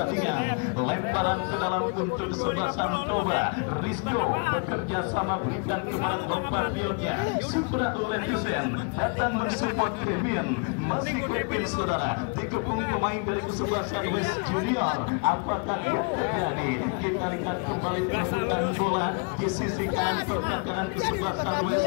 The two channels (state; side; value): quieter; right; 34.8 dB